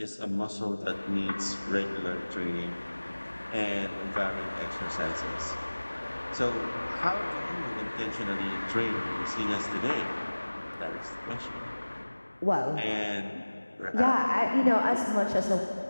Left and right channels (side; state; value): both; inverted; correlation -1.00